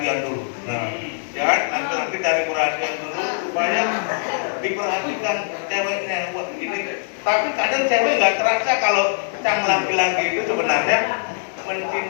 dulu. Nah, ya kan? Nanti cari perhatian dulu supaya diperhatikan ceweknya. Wah, ini. Tapi kadang cewek nggak terasa kalau sang laki-laki itu sebenarnya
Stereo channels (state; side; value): silent; right; 58 dB below the other